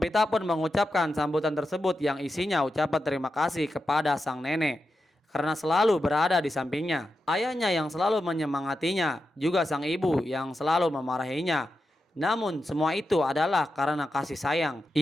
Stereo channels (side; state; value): both; normal; correlation 0.89